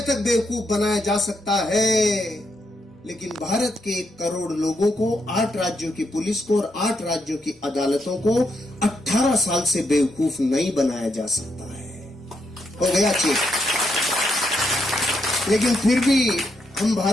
तक बेवकूफ बनाया जा सकता है, लेकिन भारत के 1 करोड़ लोगों को, 8 राज्यों की पुलिस को और 8 राज्यों की अदालतों को 18 साल से बेवकूफ नहीं बनाया जा सकता है। हो गया चेक। लेकिन फिर भी हम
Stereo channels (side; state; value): both; normal; correlation 0.79